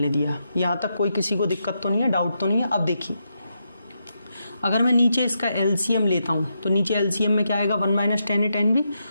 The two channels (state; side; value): inverted; both; correlation -0.83